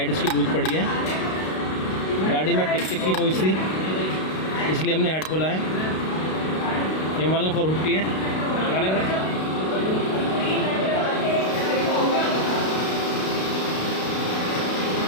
इसकी लूज पड़ी है। गाड़ी में टिक टिक की नॉइस थी, इसलिए हमने हेड खोला है। ये हिमालयन 450 है।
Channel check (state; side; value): late; right; 32 ms